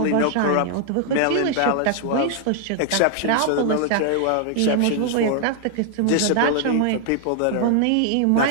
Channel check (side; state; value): both; different; correlation 0.00